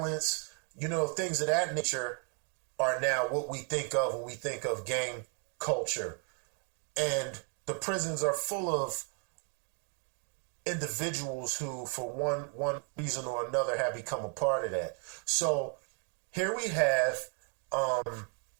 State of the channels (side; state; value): left; quieter; 37.3 dB